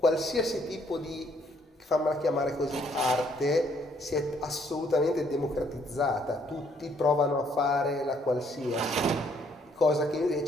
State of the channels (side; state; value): both; normal; correlation 0.67